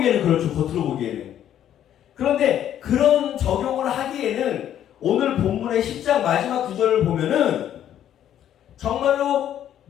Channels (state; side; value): quieter; right; 10.7 dB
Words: 그렇죠. 겉으로 보기에는. 그런데 그런 적용을 하기에는 오늘 본문의 10장 마지막 구절을 보면은 정말로